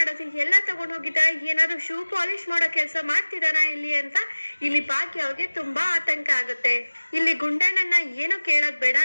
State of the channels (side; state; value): both; inverted; correlation -1.00